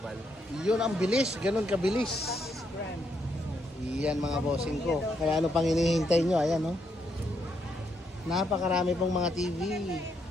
Yun ang bilis. Ganun kabilis. Iyan mga bossing ko. Kaya ano pang hinihintay nyo? Ayan o. Napakarami pong mga TV.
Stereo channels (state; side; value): normal; both; correlation 0.77